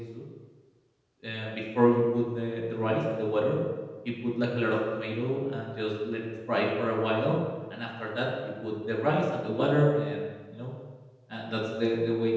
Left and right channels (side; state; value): both; identical; correlation 1.00